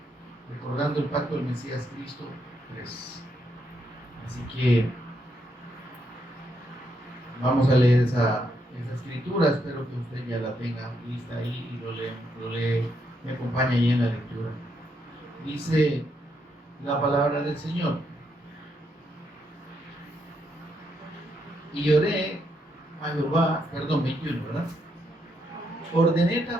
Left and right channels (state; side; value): normal; both; correlation 0.78